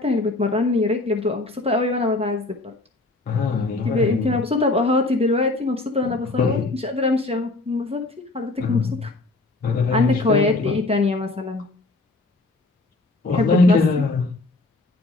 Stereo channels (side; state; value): right; quieter; 3.0 dB